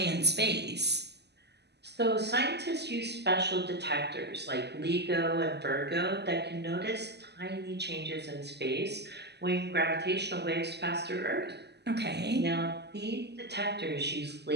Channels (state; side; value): late; left; 0.49 ms